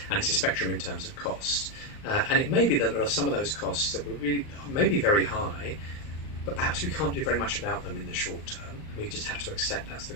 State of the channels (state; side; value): late; right; 39 ms